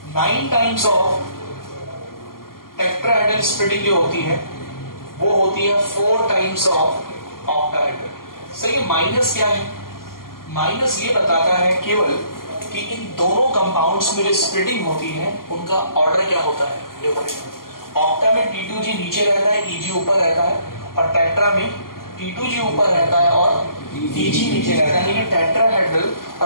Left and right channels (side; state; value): right; late; 0.92 ms